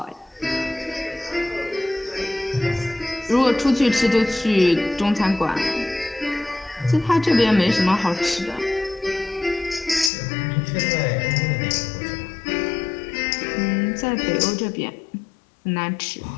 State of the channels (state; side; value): drops out; right; at 10.1 s